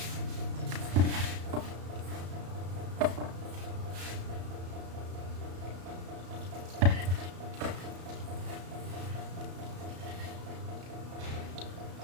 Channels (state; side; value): late; left; 33 ms